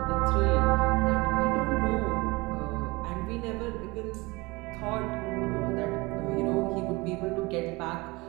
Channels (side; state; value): left; quieter; 23.8 dB